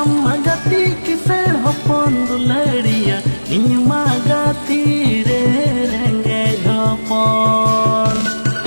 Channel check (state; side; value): inverted; both; correlation -1.00